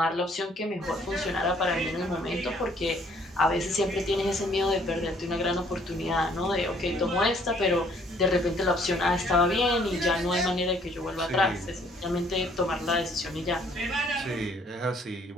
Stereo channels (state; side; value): normal; both; correlation 0.62